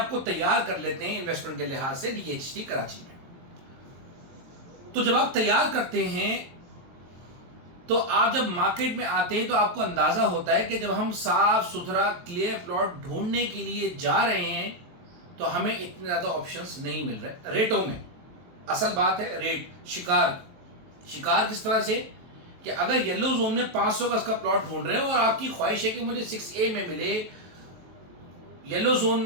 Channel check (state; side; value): late; left; 23 ms